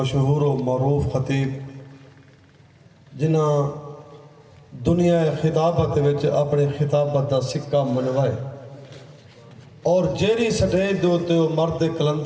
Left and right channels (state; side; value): identical; both; correlation 1.00